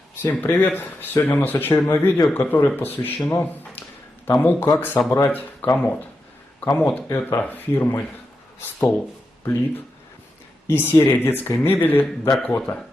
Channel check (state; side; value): normal; both; correlation 0.88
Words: Всем привет! Сегодня у нас очередное видео, которое посвящено тому, как собрать комод. Комод это фирмы Столплит и серия детской мебели Dakota.